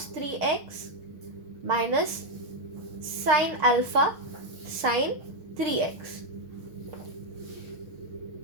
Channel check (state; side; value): late; left; 6.6 ms